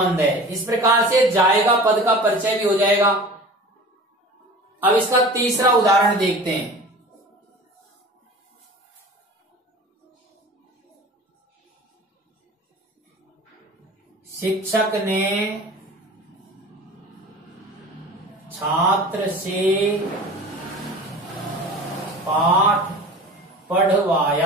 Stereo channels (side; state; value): both; normal; correlation 0.39